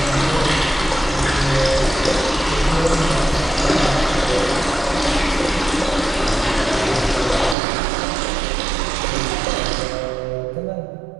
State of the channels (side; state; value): left; drops out; at 7.6 s